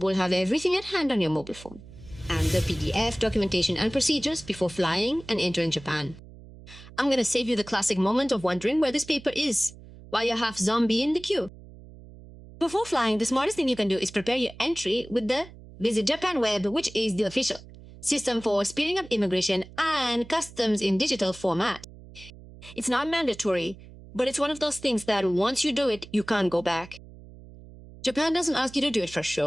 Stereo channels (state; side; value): noise; right; hum, 18 dB below the sound